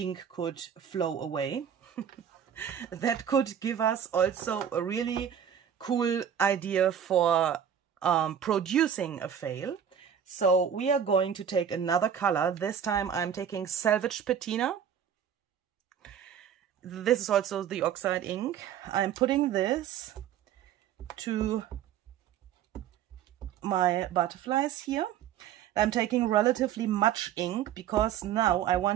could flow away. That could give us also a really cool idea for producing a fail. So we are going to take another color. This time I'm taking Salvage Patina. This is also the oxide ink. I'm putting this to my butterflies here. I'm taking relatively much ink because now I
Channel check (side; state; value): left; quieter; 8.9 dB